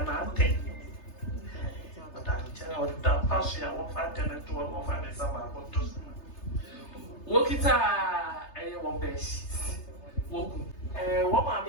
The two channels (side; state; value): right; late; 3.3 ms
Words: Nante. But I'm telling you that passion. I won't find tenant to one of the summer. Wokita one best. Woku. What